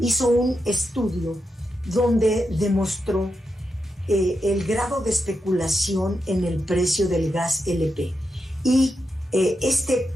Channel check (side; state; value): both; normal; correlation 0.86